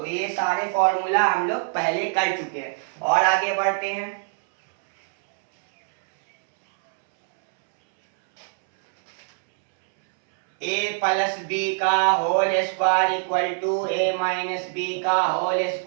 ये सारे formula हम लोग पहले कर चुके हैं और आगे बढ़ते हैं। a प्लस बी का whole square equal to a minus B का whole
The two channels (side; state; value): left; silent; 63 dB below the other